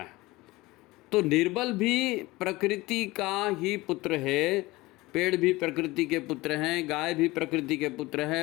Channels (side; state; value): right; quieter; 20.5 dB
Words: तो निर्बल भी प्रकृति का ही पुत्र है, पेड़ भी प्रकृति के पुत्र हैं, गाय भी प्रकृति के पुत्र